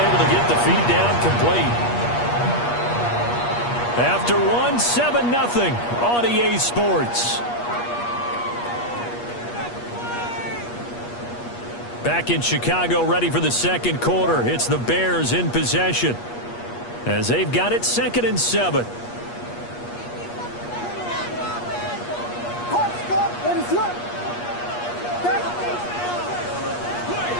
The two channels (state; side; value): late; right; 8.4 ms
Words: to get the feed down complete. After 1, 7-0 on EA Sports. Back in Chicago, ready for the 2nd quarter. It's the Bears in possession as they've got it 2nd and 7.